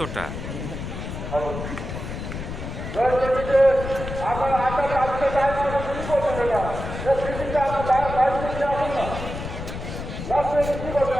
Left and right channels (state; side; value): noise; left; rumble, 7 dB below the sound